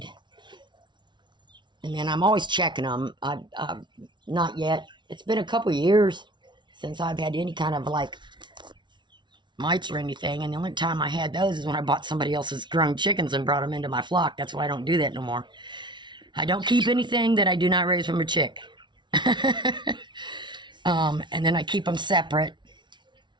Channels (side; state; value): left; late; 0.23 ms